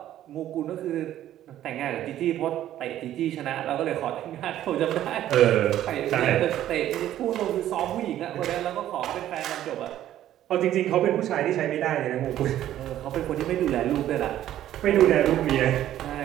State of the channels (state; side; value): quieter; left; 12.4 dB